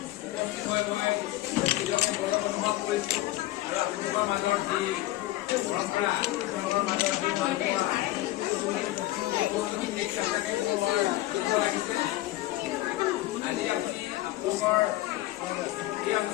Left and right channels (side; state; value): right; quieter; 16.5 dB